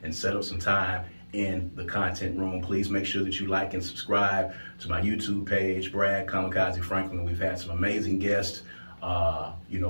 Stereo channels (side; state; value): both; inverted; correlation -1.00